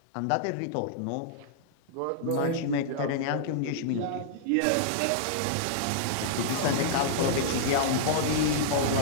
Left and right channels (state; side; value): different; both; correlation -0.02